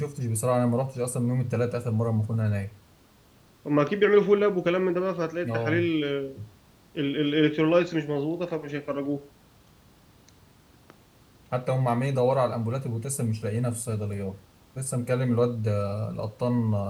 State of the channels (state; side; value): identical; both; correlation 1.00